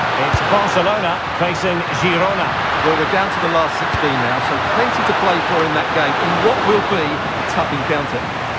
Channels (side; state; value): both; identical; correlation 1.00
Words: It's Barcelona facing Girona. Well, we're down to the last 16 now, so plenty to play for in that game, in what will be a tough encounter.